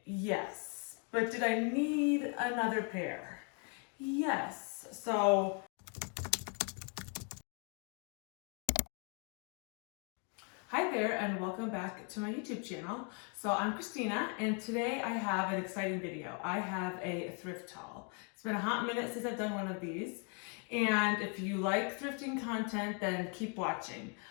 Yes. But did I need another pair? Yes. So hi there and welcome back to my YouTube channel. So I'm Christina and today I have an exciting video. I have a thrift haul. It's been a hot minute since I've done one of these. And if you like thrifting content, then keep watching.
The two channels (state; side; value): quieter; right; 38.6 dB